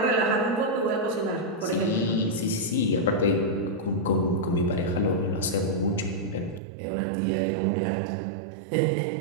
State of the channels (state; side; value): drops out; left; at 6.6 s